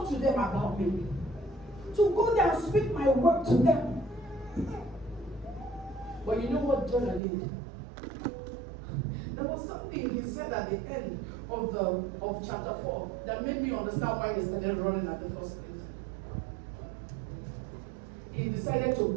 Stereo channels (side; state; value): left; drops out; at 7.2 s